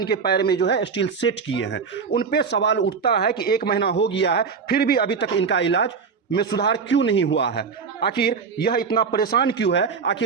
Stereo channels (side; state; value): left; quieter; 5.6 dB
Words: पैर में जो है स्टील सेट किए हैं, उन पे सवाल उठता है कि 1 महीना हो गया है फिर भी अभी तक इनका इलाज में सुधार क्यों नहीं हुआ है। आखिर यह इतना परेशान क्यों है?